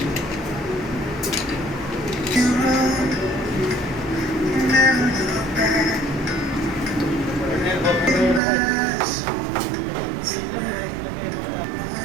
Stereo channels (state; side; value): drops out; left; at 8.4 s